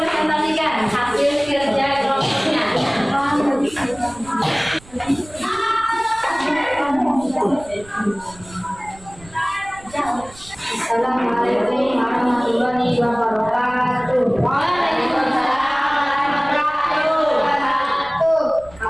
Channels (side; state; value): right; noise; rumble, 22 dB below the sound